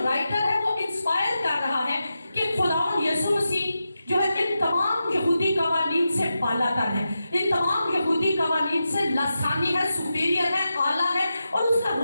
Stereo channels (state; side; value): inverted; both; correlation -0.90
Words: राइटर है वो इंस्पायर कर रहा है कि खुदावंद यीशु मसीह जो है इन तमाम यहूदी कवानीन से बालातर है, इन तमाम यहूदी कवानीन से लसानी है, सुपीरियर है, आला है, और उसका